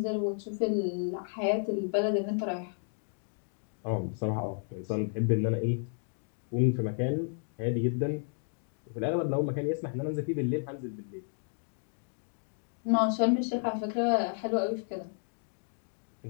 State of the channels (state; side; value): silent; right; 56 dB below the other